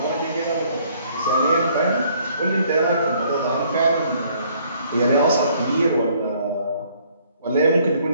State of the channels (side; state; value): both; inverted; correlation -0.62